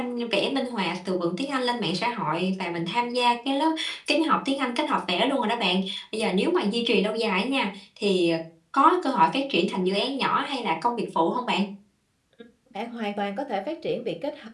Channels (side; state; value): both; identical; correlation 1.00